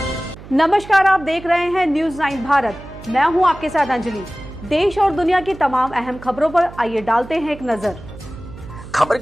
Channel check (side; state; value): right; noise; hum, 16 dB below the sound